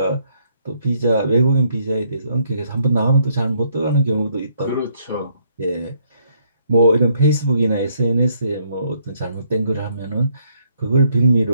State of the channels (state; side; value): inverted; both; correlation -0.70